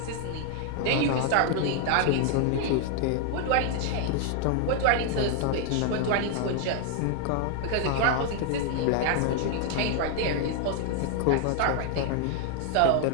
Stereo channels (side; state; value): both; different; correlation 0.00